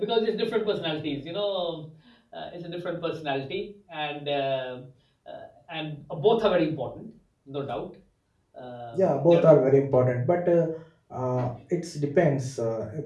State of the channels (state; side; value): identical; both; correlation 1.00